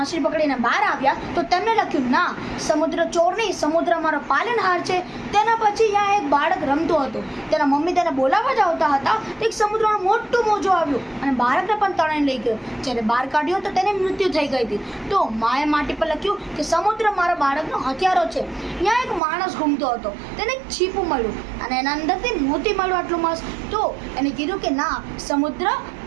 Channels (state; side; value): drops out; left; at 19.2 s